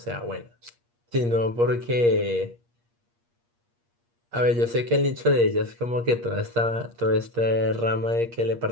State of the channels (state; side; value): late; left; 8.5 ms